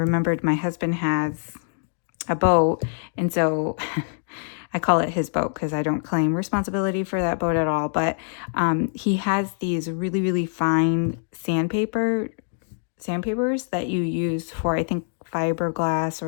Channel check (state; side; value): silent; right; digital silence